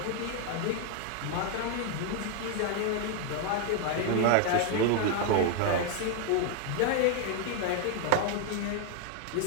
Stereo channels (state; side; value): different; both; correlation 0.00